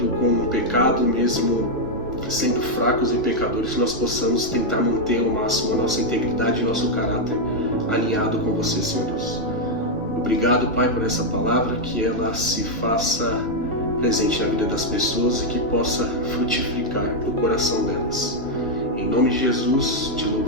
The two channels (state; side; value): normal; both; correlation -0.01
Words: com um pecado, mesmo sendo fracos e pecadores, que nós possamos tentar manter ao máximo a nossa integridade e nosso caráter alinhado com você, Senhor Deus. Obrigado, Pai, por essa palavra, que ela se faça presente na vida das pessoas e que possa frutificar no coração delas. Em nome de Jesus, te